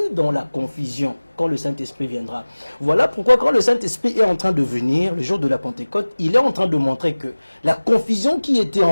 dans la confusion quand le Saint-Esprit viendra. Voilà pourquoi quand le Saint-Esprit est en train de venir, le jour de la Pentecôte, il est en train de montrer que la confusion qui était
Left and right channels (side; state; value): both; inverted; correlation -1.00